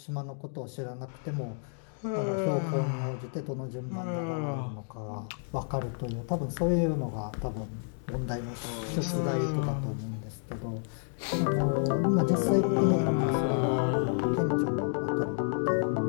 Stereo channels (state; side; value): silent; right; 57 dB below the other